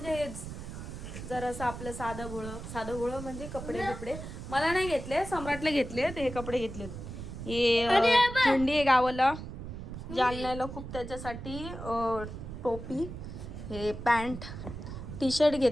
हेच जरासं आपलं साधं भोळं म्हणजे कपडे बिपडे मला नाही घेतले, सम्राटला घेतले. हे कपडे घेतलेत. हे थंडी आहे गावाला, जालन्याला खूप, त्याच्यासाठी टोपी, हे पॅन्ट, टी शर्ट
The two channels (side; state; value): right; noise; rumble, 9 dB below the sound